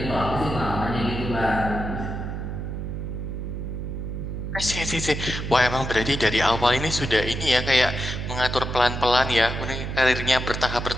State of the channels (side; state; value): right; noise; hum, 5 dB below the sound